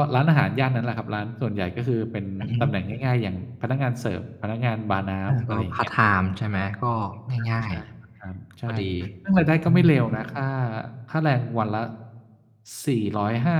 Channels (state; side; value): identical; both; correlation 1.00